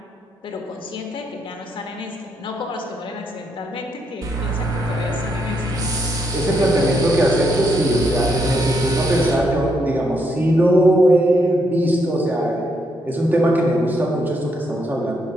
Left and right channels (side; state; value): both; normal; correlation 0.77